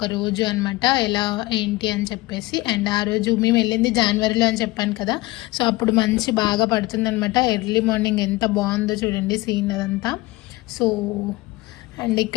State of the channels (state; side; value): quieter; right; 20.1 dB